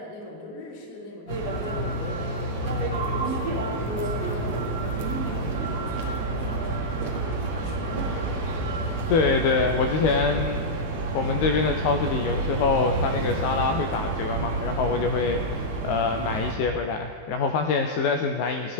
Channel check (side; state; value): right; late; 19 ms